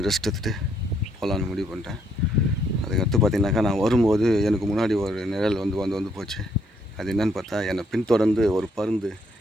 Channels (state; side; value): normal; both; correlation 0.71